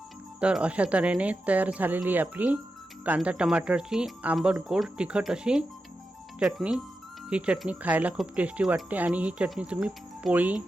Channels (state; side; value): normal; both; correlation 0.90